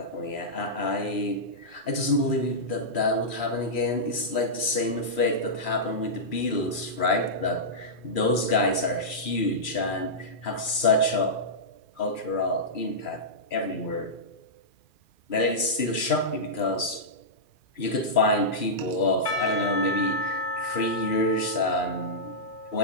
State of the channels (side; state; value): right; late; 2.4 ms